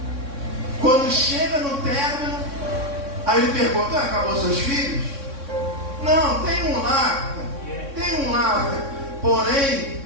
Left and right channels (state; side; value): late; left; 3.6 ms